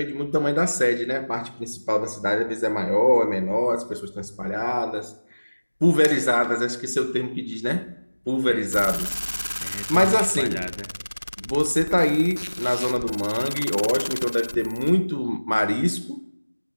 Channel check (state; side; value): inverted; both; correlation -1.00